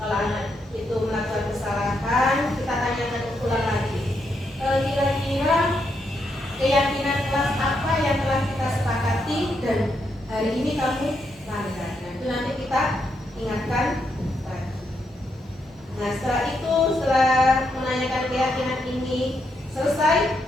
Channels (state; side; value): normal; both; correlation 0.80